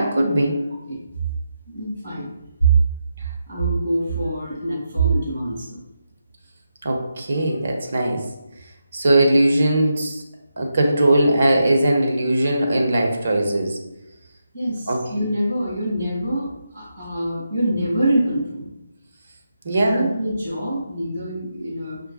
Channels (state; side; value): inverted; both; correlation -0.85